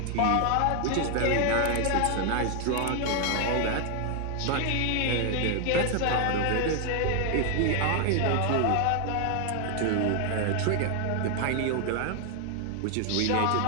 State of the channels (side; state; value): both; different; correlation 0.00